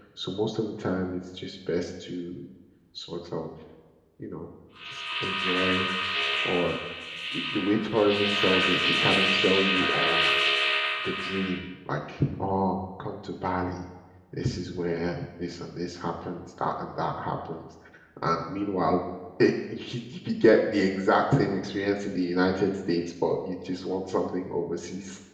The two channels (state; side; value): identical; both; correlation 1.00